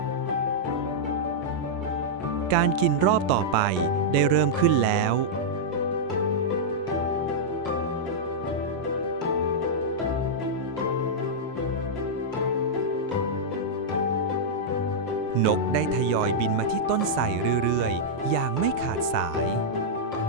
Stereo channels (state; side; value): normal; both; correlation -0.07